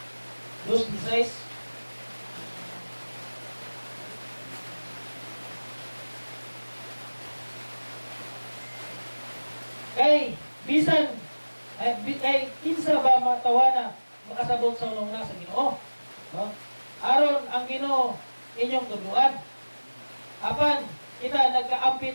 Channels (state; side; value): inverted; both; correlation -1.00